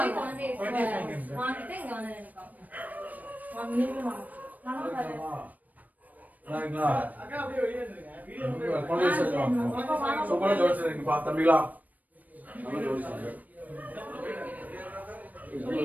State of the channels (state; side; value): late; left; 0.078 ms